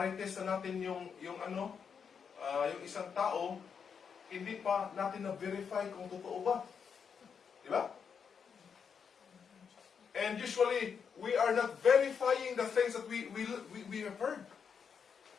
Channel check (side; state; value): right; quieter; 6.6 dB